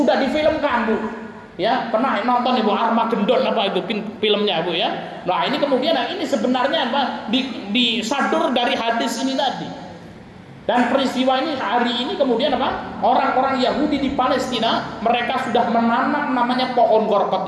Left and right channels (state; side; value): identical; both; correlation 1.00